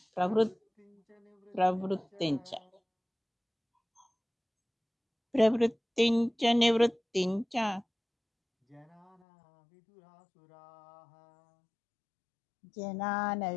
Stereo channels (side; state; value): right; drops out; at 9.2 s